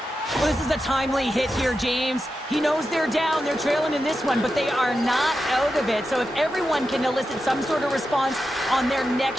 Well, this is a timely hit here, James. He knows they're down, they're trailing in this one, but they are not out of it. So if everyone can elicit some sort of response on their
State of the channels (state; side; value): normal; both; correlation 0.89